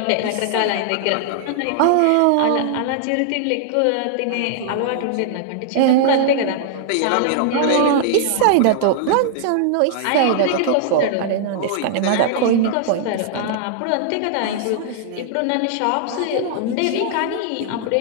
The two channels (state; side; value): different; both; correlation -0.01